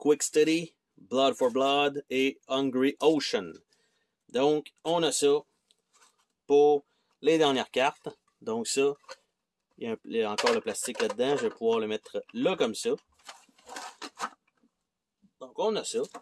Steady, Blood for Blood et Hungry Ocean. Donc, on a ça pour les dernières cartes. Donc ça, il y a encore le plastique là-dedans. Je vais pouvoir le mettre là comme ça. Donc, on a ça.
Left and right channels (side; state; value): both; identical; correlation 1.00